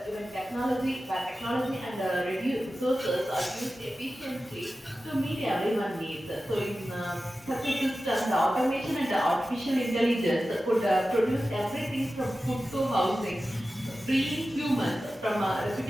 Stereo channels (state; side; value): normal; both; correlation 0.94